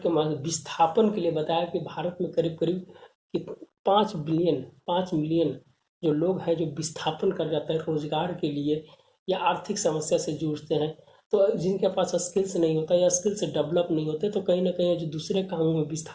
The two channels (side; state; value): both; identical; correlation 1.00